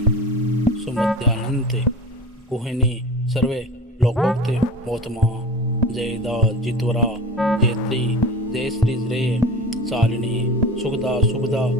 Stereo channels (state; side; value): normal; both; correlation 0.35